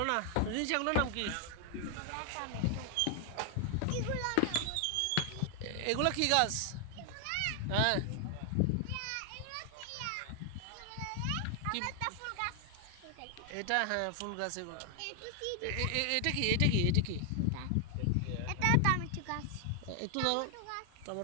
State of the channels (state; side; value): different; both; correlation 0.00